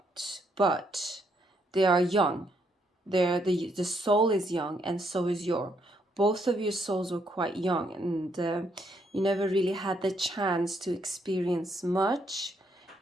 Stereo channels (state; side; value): normal; both; correlation 0.73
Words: they are young. The soul is young, and so is both of your souls were quite young, and you never really had the chance to experience much.